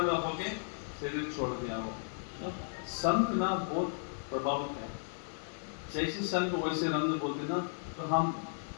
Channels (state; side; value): silent; right; 55 dB below the other